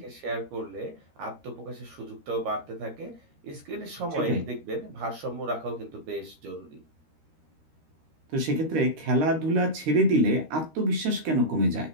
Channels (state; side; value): late; left; 13 ms